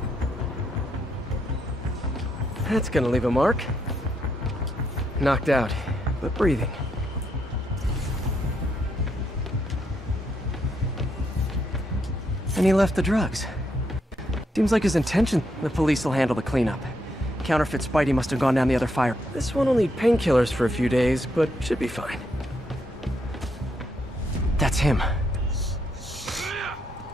That's gonna leave a mark. Knocked out, but breathing. And he left the drugs. Seems like his intention. The police will handle the cleanup. Counterfeit Spidey must have gone down the other fire. This one will need painkillers for a few days, but should be fine. That's him.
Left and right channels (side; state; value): both; normal; correlation 0.77